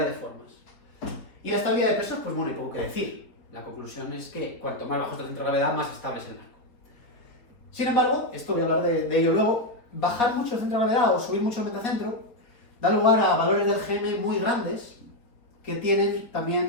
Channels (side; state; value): right; late; 4.0 ms